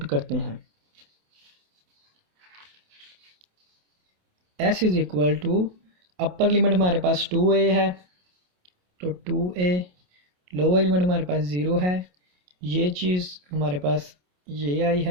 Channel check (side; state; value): left; late; 28 ms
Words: करते हैं। s is equal to upper limit हमारे पास 2a है तो 2a, लोअर लिमिट हमारे पास 0 है, ये चीज़ हमारे पास ये आई